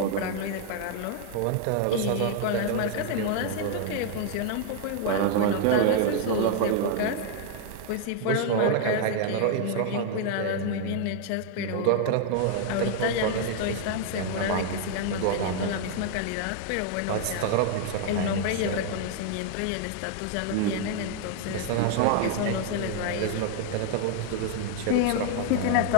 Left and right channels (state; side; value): different; both; correlation 0.00